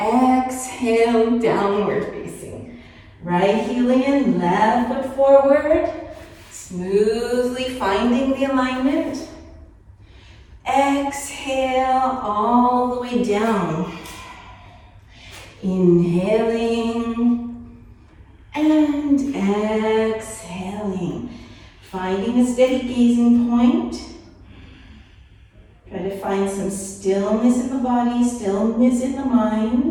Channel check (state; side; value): identical; both; correlation 1.00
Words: downward facing. Right heel in, left foot forward. Smoothly finding the alignment. Exhale all the way down. Inhaling and exhaling. Finding a steady gazing point. Try to find some stillness in the body, stillness in the